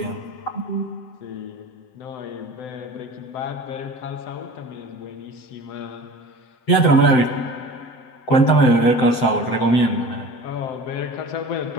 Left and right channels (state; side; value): late; right; 7.8 ms